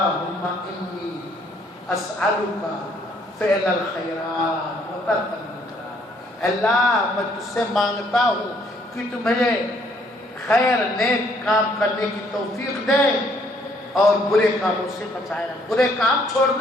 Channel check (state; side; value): normal; both; correlation 0.65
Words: انی اسألک فعل الخیرات و ترک المنکرات. اللہ میں تجھ سے مانگتا ہوں کہ تو مجھے خیر نیک کام کرنے کی توفیق دے اور برے کاموں سے بچائے رکھ، برے کام